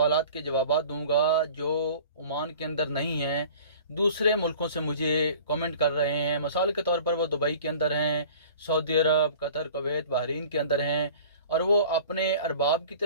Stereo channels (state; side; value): inverted; both; correlation -0.45